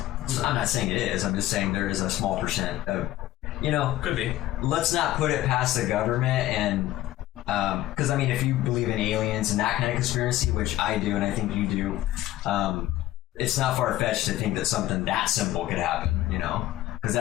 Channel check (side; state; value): right; quieter; 14.9 dB